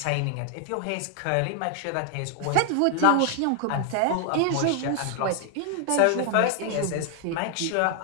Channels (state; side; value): different; both; correlation 0.00